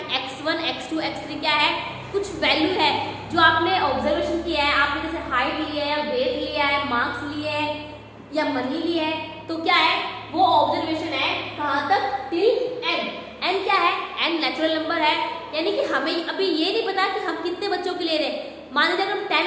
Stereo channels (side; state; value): both; identical; correlation 1.00